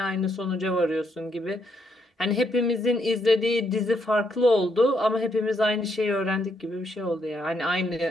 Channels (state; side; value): normal; both; correlation 0.75